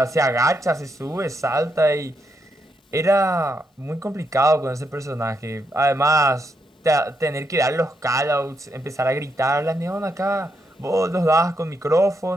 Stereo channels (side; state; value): both; normal; correlation 0.80